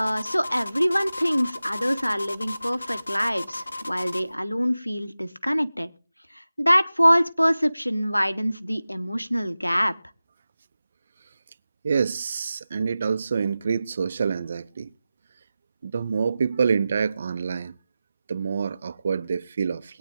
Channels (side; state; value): both; inverted; correlation -0.95